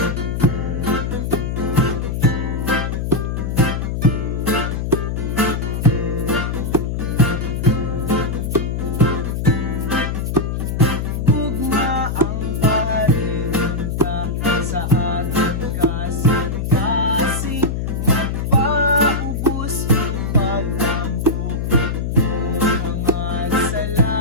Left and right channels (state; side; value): noise; left; hum, 1 dB below the sound